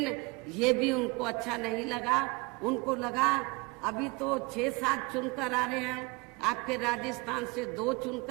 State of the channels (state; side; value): quieter; left; 26.9 dB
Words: ये भी उनको अच्छा नहीं लगा। उनको लगा अभी तो 6-7 चुनकर आ रहे हैं, आपके राजस्थान से 2